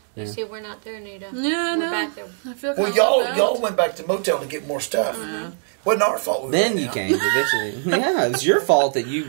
Yeah. You see, we're not there, Nita. Yeah, We're no. back there. I feel Well, kinda left y'all out. went back to motel to get more stuff. Wasn't our fault. We Then went you out. came eventually. Yeah, it was your fault that you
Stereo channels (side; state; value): left; silent; digital silence